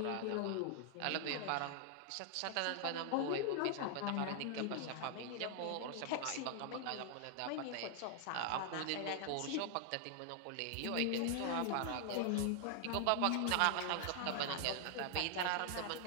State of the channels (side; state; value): both; different; correlation 0.00